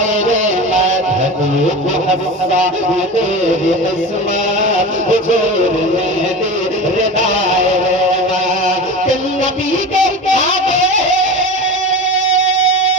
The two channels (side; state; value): both; normal; correlation 0.30